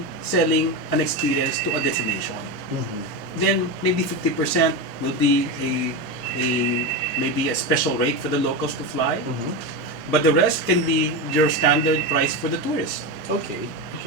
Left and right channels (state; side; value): late; left; 4.0 ms